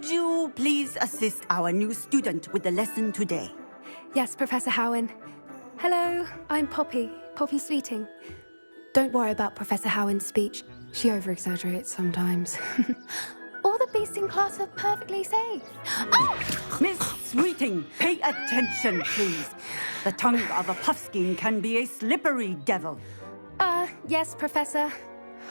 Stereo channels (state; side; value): inverted; both; correlation -1.00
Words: you please assist our new student with the lesson today? Yes, Professor Howen. Hello, I'm Poppy Sweeting. Don't worry about Professor Howen's speech. She over-exaggerates sometimes. All the beasts in class are perfectly safe. Oh! Miss Sweeting, pay attention, please. The tongue of a puffskein can be a slippery devil. Yes, Professor.